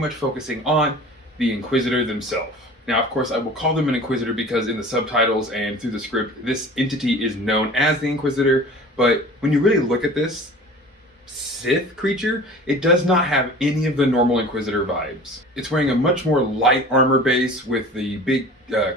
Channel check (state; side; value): normal; both; correlation 0.41